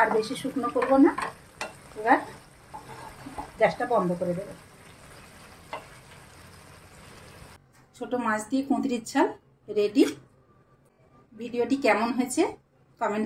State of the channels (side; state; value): both; identical; correlation 1.00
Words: আর বেশি শুকনো করবো না, এবার গ্যাসটা বন্ধ করে দেবো। ছোট মাছ দিয়ে কুঁদরির ঝাল রেডি। ভিডিওটি কেমন হয়েছে